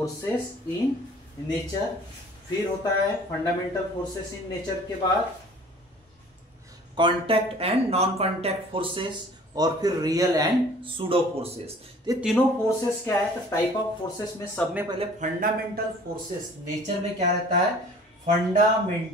in nature. फिर होता है फंडामेंटल फोर्सेस इन नेचर के बाद contact and non contact forces, और फिर रियल एंड सूडो फोर्सेस। ये तीनों फोर्सेस क्या है? तो टाइप ऑफ फोर्सेस में सब में पहले फंडामेंटल फोर्सेस, नेचर में क्या रहता है?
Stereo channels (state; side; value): normal; both; correlation 0.49